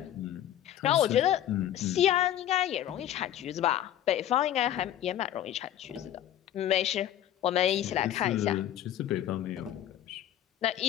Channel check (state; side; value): quieter; right; 11.6 dB